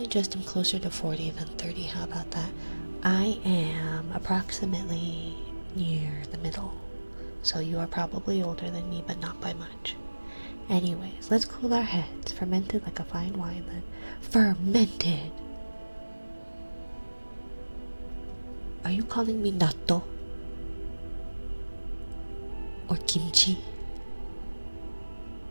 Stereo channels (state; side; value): inverted; both; correlation -1.00